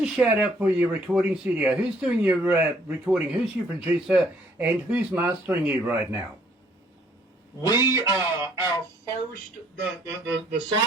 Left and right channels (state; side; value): normal; both; correlation 0.63